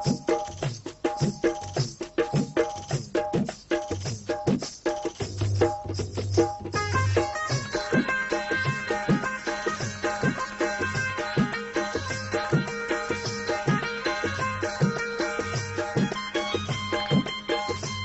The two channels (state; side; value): identical; both; correlation 1.00